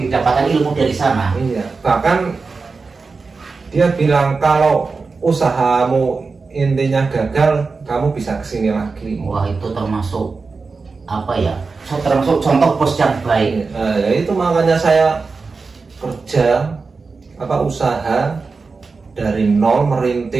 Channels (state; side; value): quieter; left; 4.4 dB